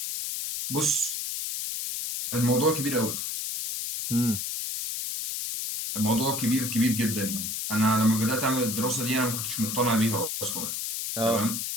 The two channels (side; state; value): left; noise; hiss, 3 dB below the sound